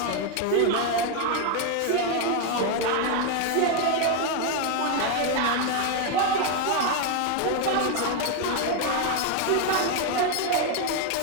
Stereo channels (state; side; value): different; both; correlation 0.01